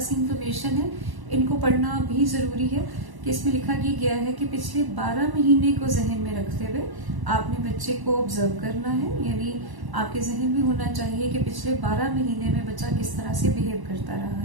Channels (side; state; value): left; late; 1.0 ms